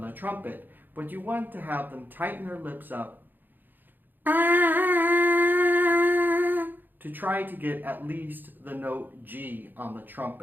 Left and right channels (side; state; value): left; late; 0.090 ms